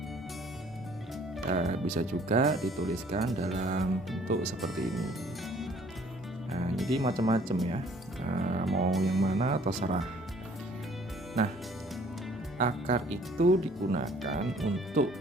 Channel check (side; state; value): both; normal; correlation 0.57